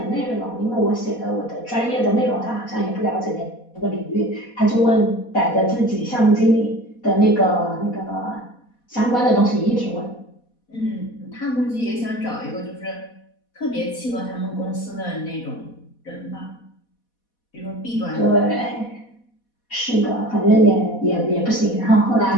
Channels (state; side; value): late; right; 4.1 ms